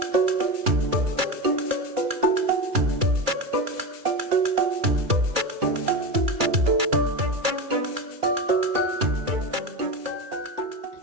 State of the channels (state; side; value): late; left; 2.3 ms